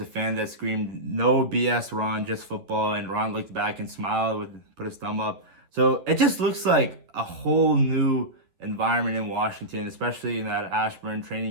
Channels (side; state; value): left; late; 10 ms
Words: a fan that screamed, "No BS, Ron, just football." And Ron looked back and smiled, put his thumb up. So it just looks like a whole new environment in Washington, especially in that Ashburn